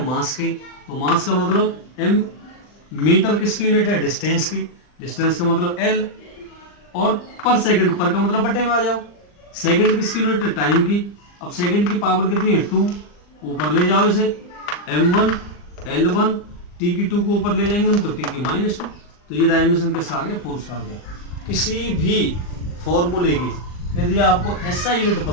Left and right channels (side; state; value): right; late; 39 ms